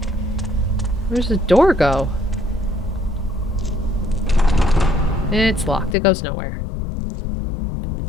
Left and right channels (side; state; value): right; drops out; at 6.0 s